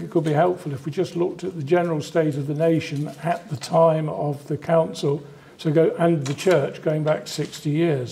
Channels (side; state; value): both; identical; correlation 1.00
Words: it could be helpful if we just looked at the general state of the nation at the time of the Council, and the Church going back 60